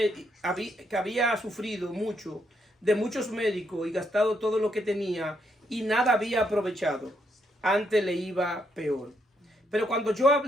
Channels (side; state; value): both; normal; correlation 0.76